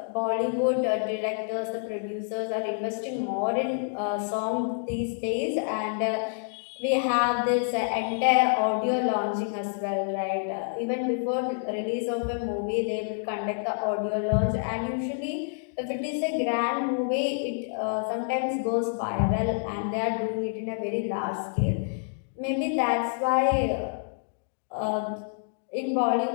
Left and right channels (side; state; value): right; silent; digital silence